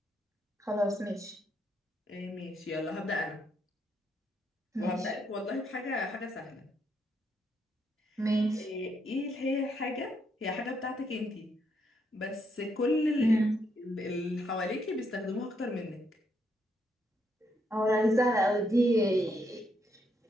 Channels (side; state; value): both; normal; correlation 0.76